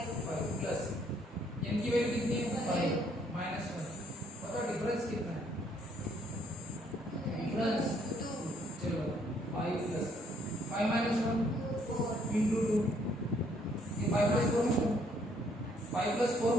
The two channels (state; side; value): normal; both; correlation 0.67